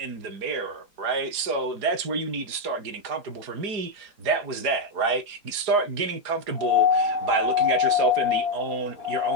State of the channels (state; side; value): late; left; 4.8 ms